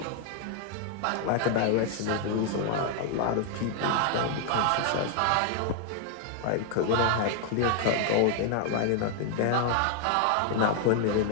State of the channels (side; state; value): both; different; correlation 0.00